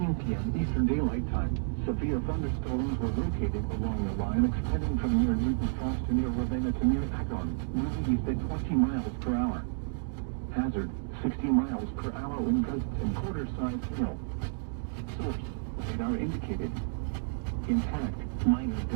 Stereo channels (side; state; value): left; silent; digital silence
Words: p.m. Eastern Daylight Time, severe thunderstorms were located along the line extending from near Newton Falls to near Ravenna to near Akron, moving east at 20 miles per hour. Hazard, 60 miles per hour wind gusts and quarter-sized hail. Source, radar indicated. Intact, minor